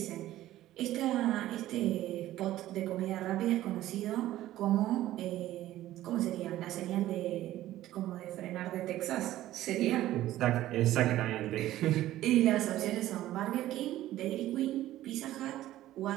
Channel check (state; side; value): quieter; left; 14.4 dB